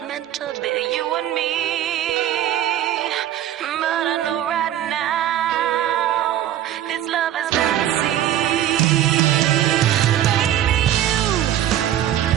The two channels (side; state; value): left; quieter; 11.8 dB